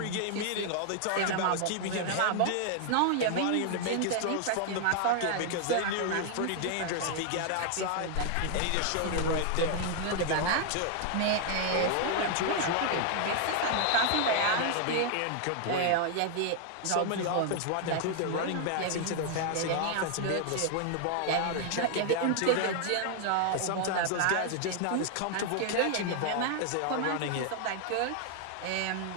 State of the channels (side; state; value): both; different; correlation 0.00